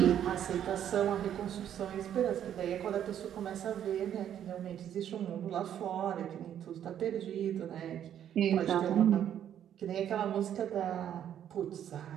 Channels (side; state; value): left; quieter; 10.0 dB